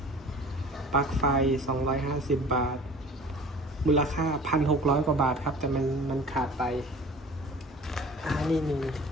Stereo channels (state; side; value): normal; both; correlation 0.43